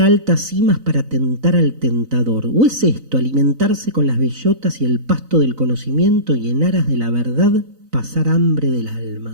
altas cimas para tentar al tentador? ¿O es esto alimentarse con las bellotas y el pasto del conocimiento y en aras de la verdad pasar hambre del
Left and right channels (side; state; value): left; late; 3.9 ms